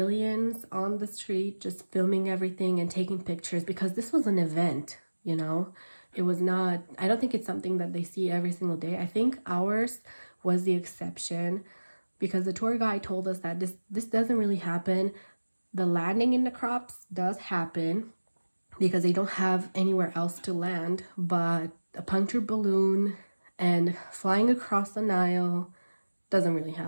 on the street just filming everything and taking pictures because this was an event, you know. It was not, I don't think it's something that they see every single day. I think ours was the exception because the tour guide told us that this doesn't really happen. The landing in the crops does happen because they don't have anywhere else to land, but a punctured balloon and flying across the Nile doesn't really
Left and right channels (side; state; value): both; inverted; correlation -1.00